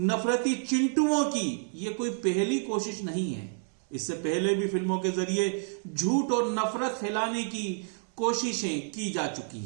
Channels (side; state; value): left; silent; 58 dB below the other